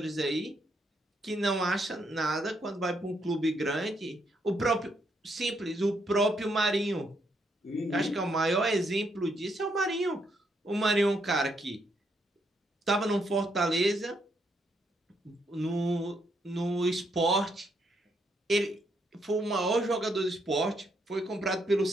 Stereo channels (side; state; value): both; normal; correlation 0.75